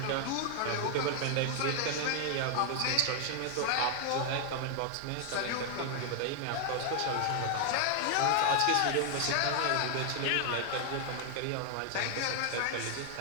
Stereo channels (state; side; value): different; both; correlation 0.00